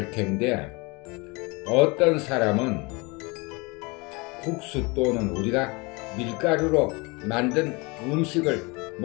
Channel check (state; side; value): quieter; right; 27.1 dB